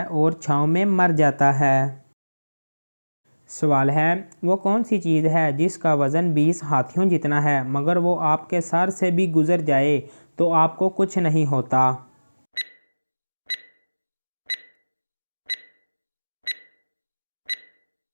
और छाँव में मर जाता है। सवाल है, वो कौन सी चीज़ है जिसका वज़न 20 हाथियों जितना है मगर वो आपके सर से भी गुज़र जाए तो आपको कुछ नहीं होता?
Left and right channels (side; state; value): both; inverted; correlation -1.00